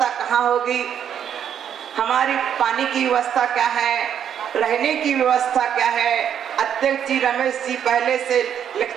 कहाँ होगी, हमारी पानी की व्यवस्था क्या है, रहने की व्यवस्था क्या है। अध्यक्ष जी रमेश जी पहले से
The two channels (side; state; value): left; quieter; 9.0 dB